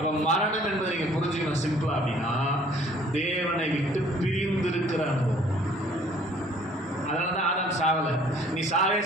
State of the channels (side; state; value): both; normal; correlation 0.56